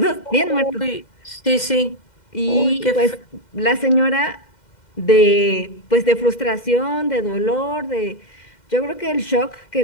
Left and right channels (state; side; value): late; right; 2.1 ms